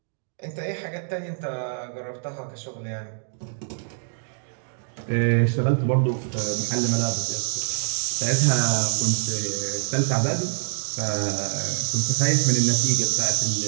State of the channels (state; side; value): silent; left; digital silence